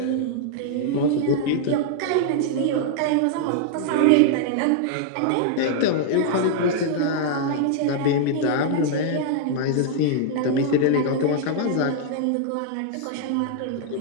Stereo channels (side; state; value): both; different; correlation -0.01